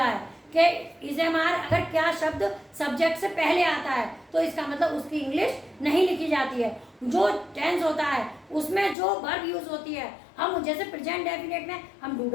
है कि इज एम आर अगर क्या शब्द सब्जेक्ट से पहले आता है तो इसका मतलब उसकी इंग्लिश नहीं लिखी जाती है। जो टेंस होता है उसमें जो वर्ब यूज होती है, हम जैसे प्रेजेंट डेफिनेट में हम डू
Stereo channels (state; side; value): drops out; right; at 9.0 s